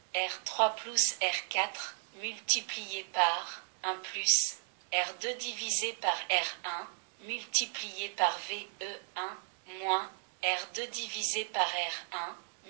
R3 plus R4 multiplié par 1 plus R2 divisé par R1 multiplié par VE1 moins R2 divisé par R1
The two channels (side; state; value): left; silent; 54 dB below the other